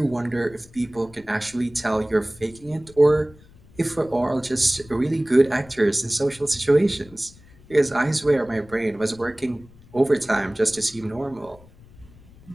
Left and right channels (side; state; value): left; noise; rumble, 24 dB below the sound